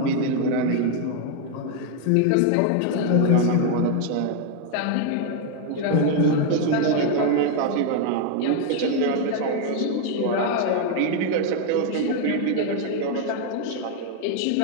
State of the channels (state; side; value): different; both; correlation 0.00